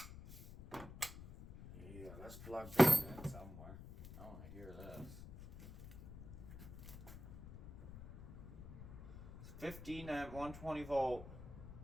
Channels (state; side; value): noise; left; rumble, 12 dB below the sound